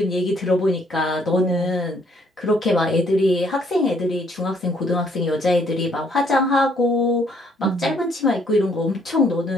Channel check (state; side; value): normal; both; correlation 0.66